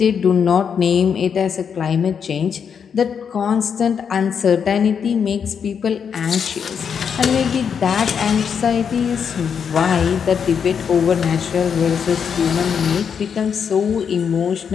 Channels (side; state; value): right; quieter; 7.1 dB